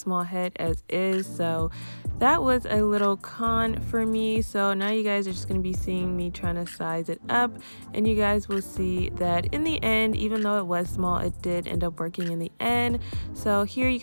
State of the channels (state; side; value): inverted; both; correlation -1.00